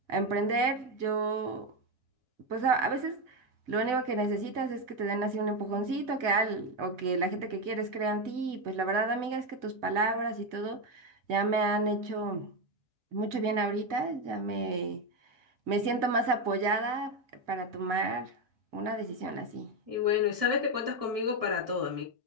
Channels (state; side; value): late; left; 2.0 ms